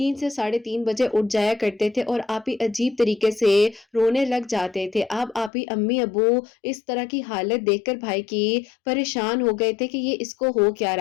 سے 3:30 بجے اٹھ جایا کرتے تھے اور آپ ہی عجیب طریقے سے رونے لگ جاتے تھے۔ اب آپ ہی امی ابو اس طرح کی حالت دیکھ کر بھائی کی پریشان ہو گئے تھے کہ یہ اس کو ہو کیا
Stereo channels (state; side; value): drops out; right; at 5.5 s